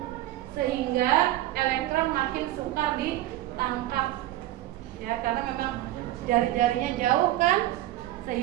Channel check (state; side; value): quieter; left; 15.2 dB